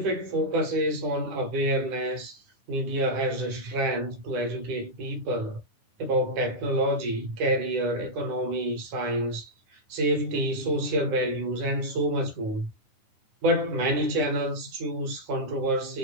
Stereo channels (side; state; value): left; late; 10 ms